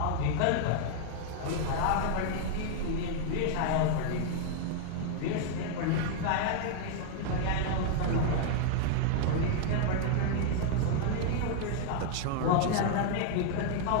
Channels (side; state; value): both; different; correlation -0.01